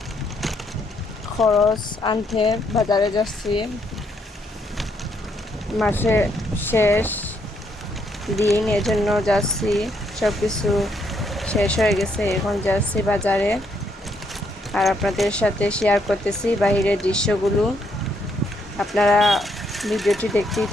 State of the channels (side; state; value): both; normal; correlation 0.74